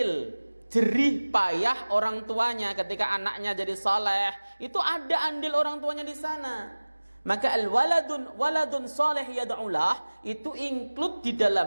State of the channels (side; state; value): both; inverted; correlation -1.00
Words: jerih payah orang tuanya. Ketika anaknya jadi saleh, itu ada andil orang tuanya di sana. Maka waladun saleh yad'ulah itu include di